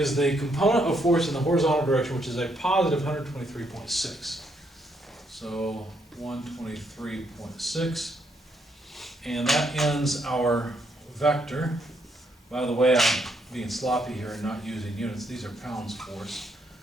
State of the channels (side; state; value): both; normal; correlation 0.74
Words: the component of force in the horizontal direction, which is a positive 123.6. So 123.6. And that ends our vector. By the way, I'm being sloppy here and not using units. These are pounds force.